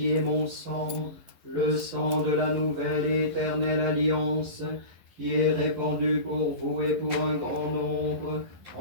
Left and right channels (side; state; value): left; late; 11 ms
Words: est mon sang, le sang de la nouvelle et éternelle alliance, qui est répandu pour vous et pour un grand nombre,